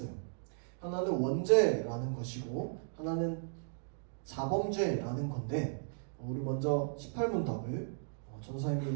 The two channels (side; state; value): left; silent; digital silence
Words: 하나는 원죄라는 것이고 하나는 자범죄라는 건데 우리 먼저 18문답을